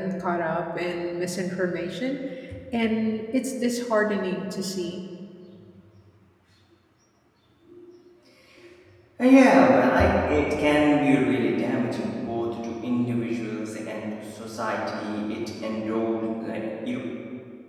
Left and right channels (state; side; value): identical; both; correlation 1.00